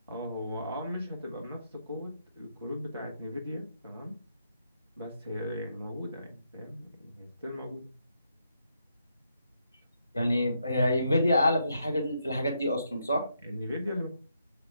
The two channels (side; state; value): both; inverted; correlation -0.78